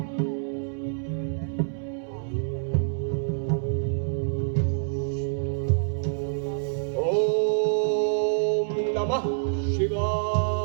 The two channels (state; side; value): silent; left; 60 dB below the other